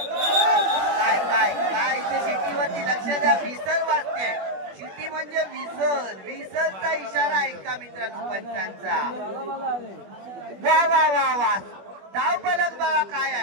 काय इथे शिट्टीवरती लक्ष द्या. विसर वाजते. शिट्टी म्हणजे विसरचा इशारा आहे का मित्रांनो पंचांचा. वा धाव फलक बघा काय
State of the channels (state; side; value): late; left; 21 ms